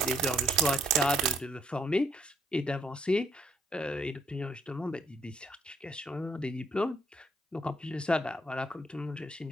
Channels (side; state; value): both; normal; correlation 0.70